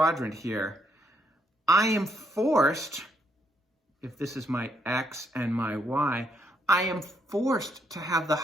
here, I am forced, if this is my x and my y, I am forced to have the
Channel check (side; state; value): both; normal; correlation 0.74